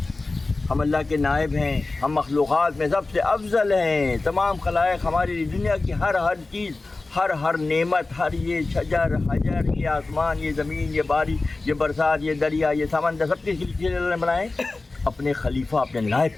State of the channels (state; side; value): quieter; right; 3.4 dB